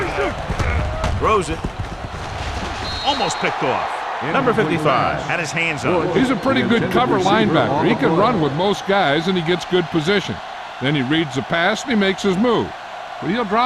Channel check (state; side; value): identical; both; correlation 1.00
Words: Throws it. Almost picked off. Number 55 had his hands up. He's a pretty good cover linebacker. He can run with most guys, and he gets good position. Then he reads the pass, and he makes his move. But he'll